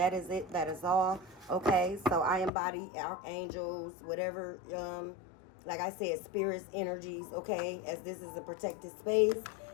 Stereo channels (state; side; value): drops out; right; at 2.5 s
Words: is it. That is all, okay? So I embody archangels, whatever, like I said, spirits, energies, okay? As this is a protected space,